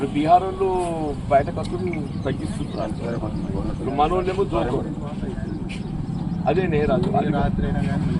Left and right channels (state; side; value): identical; both; correlation 1.00